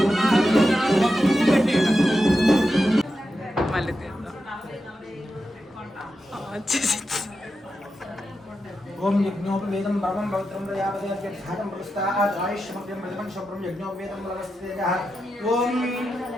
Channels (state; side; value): normal; both; correlation 0.88